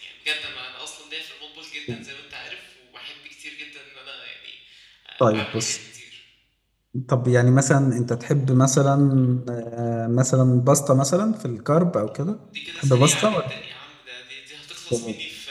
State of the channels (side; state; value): both; identical; correlation 1.00